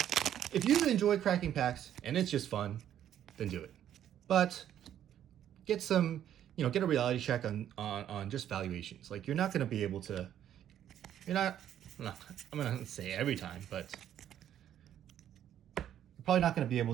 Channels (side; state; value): left; quieter; 10.6 dB